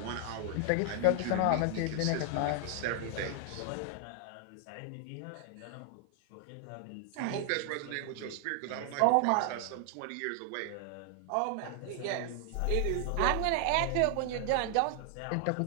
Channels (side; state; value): both; different; correlation 0.00